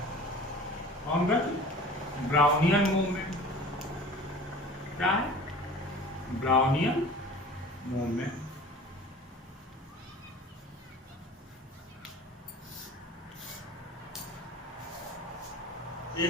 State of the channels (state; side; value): normal; both; correlation 0.42